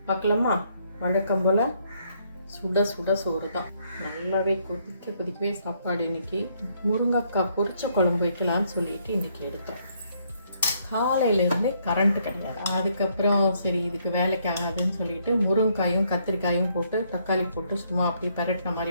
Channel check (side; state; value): both; inverted; correlation -0.70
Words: பார்க்கலாமா? வழக்கம் போல் சுட சுட சோறு தான். நல்லாவே கொதிக்கவே சாப்பாடு. இன்றைக்கி முருங்கைக்காய் பொரிச்ச குழம்பு வைக்கலான்னு சொல்லிட்டு இன்றைக்கி எடுத்தோம். காலையிலேருந்தே கரண்ட்டு கிடையாது. அதுக்கப்புறம் சரி இதுக்கு வேலைக்கு ஆகாதுன்னு சொல்லிட்டு முருங்கைக்காயும் கத்திரிக்காயும் போட்டு தக்காளி போட்டு சும்மா அப்படி பரட்டின